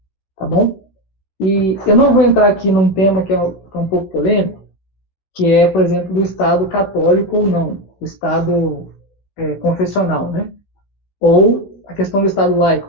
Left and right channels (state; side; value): late; right; 16 ms